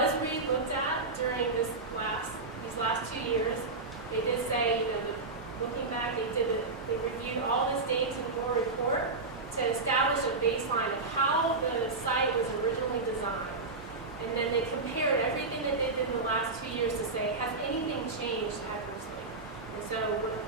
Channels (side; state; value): left; quieter; 3.6 dB